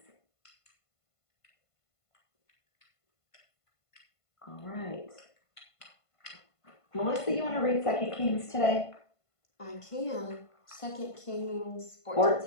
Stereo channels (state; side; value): late; right; 1.5 ms